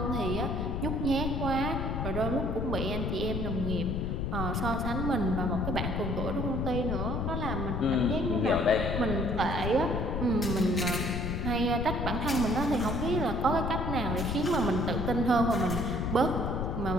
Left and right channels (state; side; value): noise; left; rumble, 1 dB below the sound